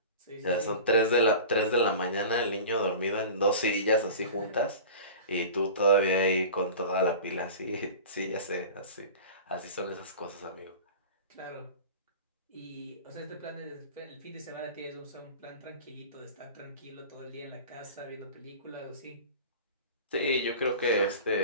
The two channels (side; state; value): both; inverted; correlation -0.36